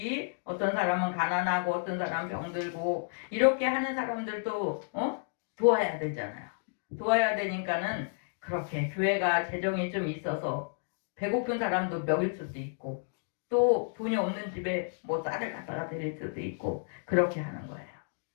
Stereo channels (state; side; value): silent; right; digital silence